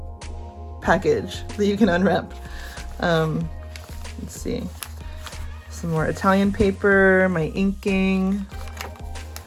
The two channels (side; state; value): both; identical; correlation 1.00